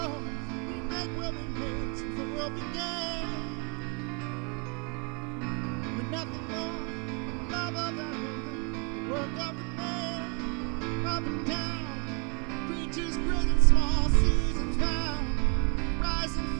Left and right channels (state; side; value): quieter; left; 33.1 dB